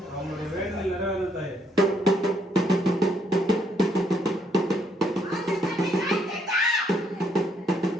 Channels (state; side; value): normal; both; correlation 0.71